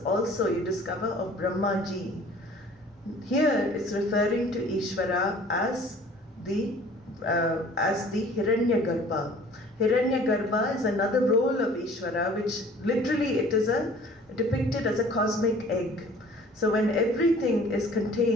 also, you discover, of Brahmaji. Here it's referring to Ishvara as the Hiranyagarbha. Hiranyagarbha is another role of Ishvara, which literally it is depicted as a cosmic egg. So when everything is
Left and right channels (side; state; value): both; normal; correlation 0.50